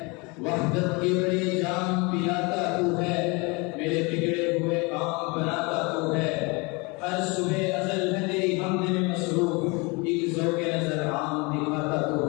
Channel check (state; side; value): quieter; right; 28.1 dB